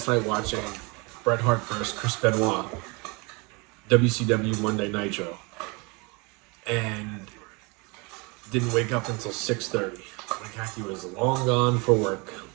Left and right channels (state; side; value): quieter; left; 28.7 dB